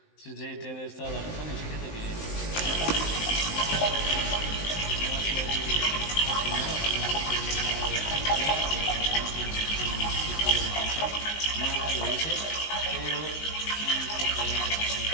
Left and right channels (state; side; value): late; right; 19 ms